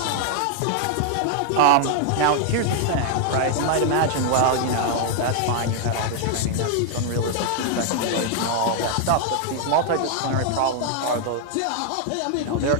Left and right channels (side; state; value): both; different; correlation 0.00